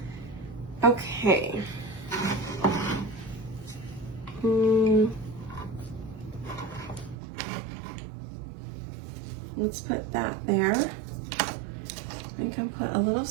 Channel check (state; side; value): drops out; left; at 7.2 s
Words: Okay. Let's put that there. We can put a little